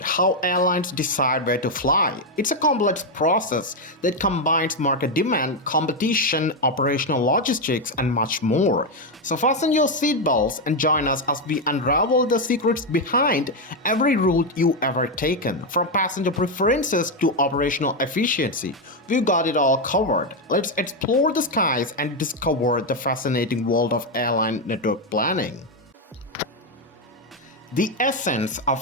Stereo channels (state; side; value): normal; both; correlation 0.05